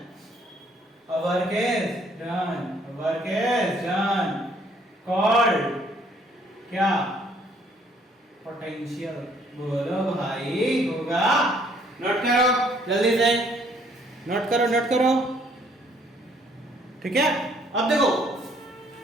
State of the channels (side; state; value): both; normal; correlation 0.63